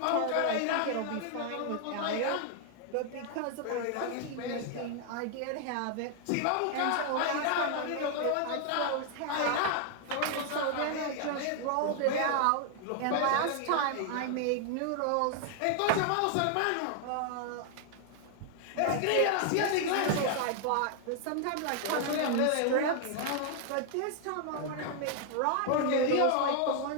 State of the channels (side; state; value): both; different; correlation 0.00